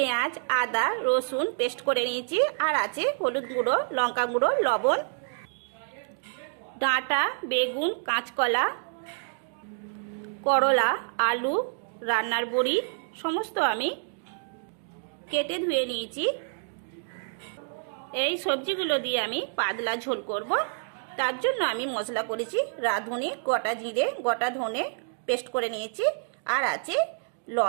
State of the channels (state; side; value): silent; left; digital silence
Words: আদা, রসুন পেস্ট করে নিয়েছি, আর আছে হলুদ গুঁড়ো, লঙ্কা গুঁড়ো, লবণ, ডাঁটা, বেগুন, কাঁচকলা, করলা, আলু, রান্নার বড়ি সমস্ত আমি কেটে ধুয়ে নিয়েছি। এই সবজিগুলো দিয়ে আমি পাতলা ঝোল করব। তার জন্য আমি মশলা করেছি রাঁধুনি, গোটা জিরে, গোটা ধনে পেস্ট করে নিয়েছি, আর আছে